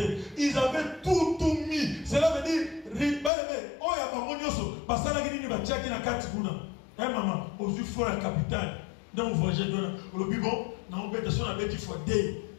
Ils avaient tout mis. aux fois la capitale. Dans le voyage, le bibon, dans l'obédition, on a bêti fois D,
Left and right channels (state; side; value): drops out; right; at 3.3 s